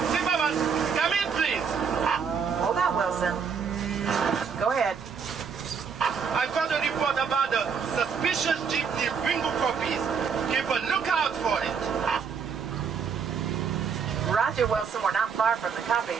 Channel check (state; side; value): quieter; left; 6.3 dB